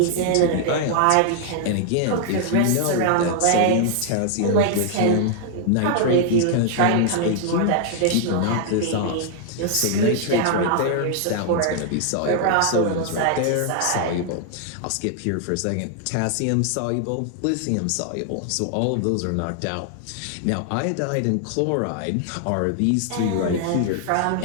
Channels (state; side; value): different; both; correlation 0.00